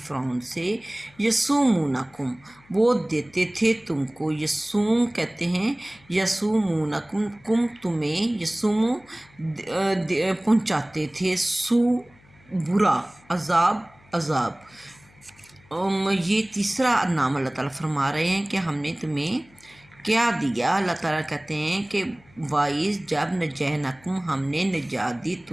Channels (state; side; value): noise; left; hum, 28 dB below the sound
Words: فرعون سے، یسومونکم وہ دیتے تھے تم کو، یسوم کہتے ہیں یسومونکم کم تمہیں، یسوم پہنچاتے تھے، سو برا، عذاب۔ یہ تیسرا نام اللہ تعالیٰ فرما رہے ہیں کہ ہم نے تمہیں کیا دیا۔ اللہ تعالیٰ کہتے ہیں کہ وائز جب نجینکم ہم نے نجات دی